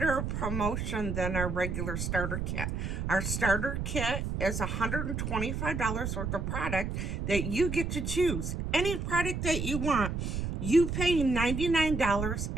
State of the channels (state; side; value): noise; right; rumble, 3 dB below the sound